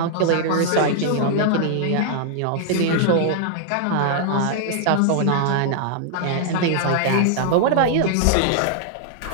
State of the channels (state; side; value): different; both; correlation -0.01